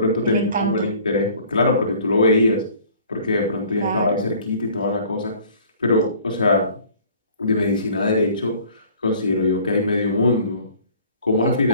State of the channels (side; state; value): both; inverted; correlation -0.52